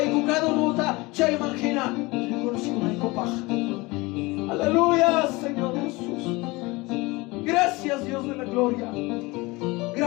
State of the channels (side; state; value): right; quieter; 23.2 dB